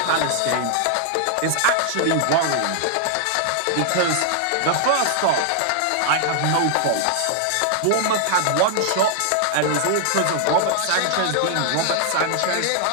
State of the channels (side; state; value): both; different; correlation 0.00